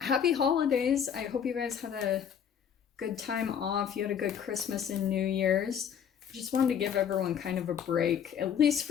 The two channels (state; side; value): quieter; right; 8.2 dB